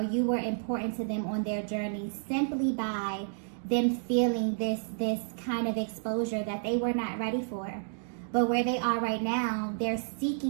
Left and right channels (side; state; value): left; silent; digital silence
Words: you were important to them on their journey, simply by them feeling this kind of exposure that they were not ready for. But where they are right now, they're